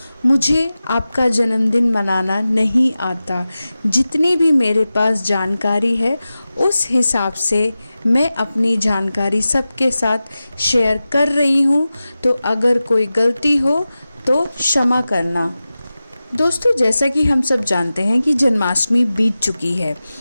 मुझे आपका जन्मदिन मनाना नहीं आता। जितनी भी मेरे पास जानकारी है उस हिसाब से मैं अपनी जानकारी सबके साथ शेयर कर रही हूँ, तो अगर कोई गलती हो तो क्षमा करना। दोस्तों, जैसा कि हम सब जानते हैं कि जन्माष्टमी बीत चुकी है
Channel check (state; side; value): inverted; both; correlation -0.95